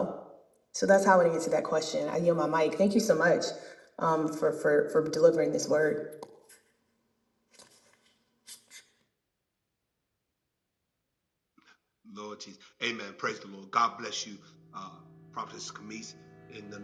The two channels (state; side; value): identical; both; correlation 1.00